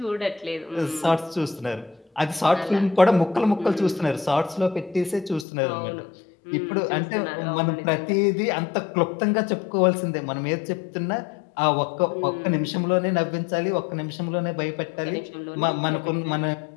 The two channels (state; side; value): drops out; right; at 5.5 s